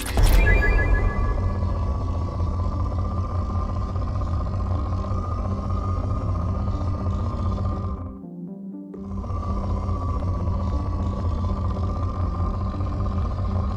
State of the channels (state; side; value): identical; both; correlation 1.00